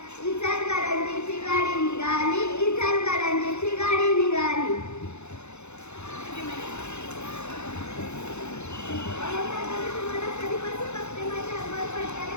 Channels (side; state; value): right; late; 0.82 ms